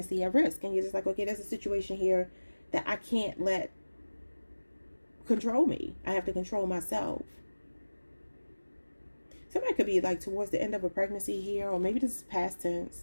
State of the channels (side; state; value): both; inverted; correlation -1.00